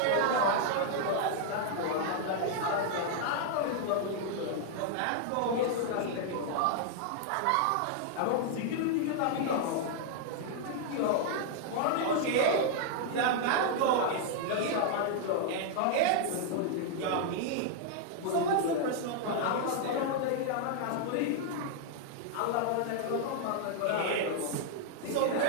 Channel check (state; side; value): different; both; correlation -0.01